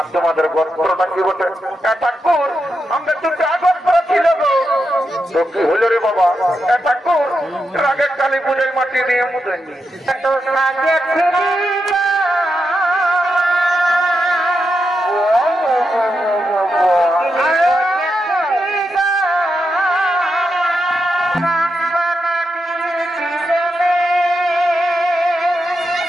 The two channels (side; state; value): both; normal; correlation 0.86